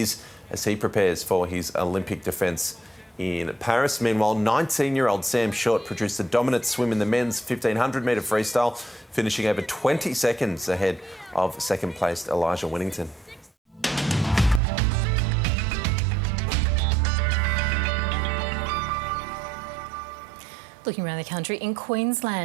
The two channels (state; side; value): drops out; left; at 14.6 s